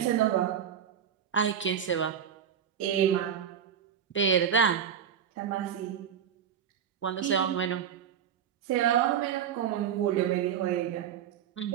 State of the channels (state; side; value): quieter; left; 8.5 dB